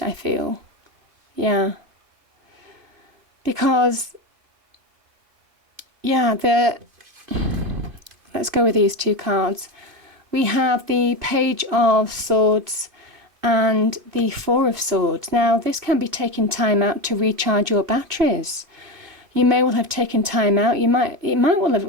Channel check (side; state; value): left; late; 2.4 ms